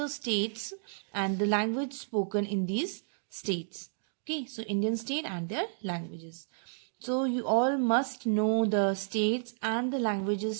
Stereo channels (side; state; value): left; silent; digital silence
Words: states and the language spoken in these states. Okay, so Indian state and their languages. So you all must know the states and the languages